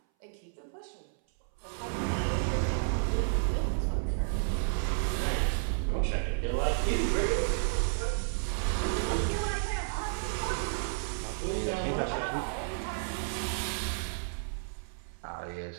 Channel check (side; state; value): left; silent; 56 dB below the other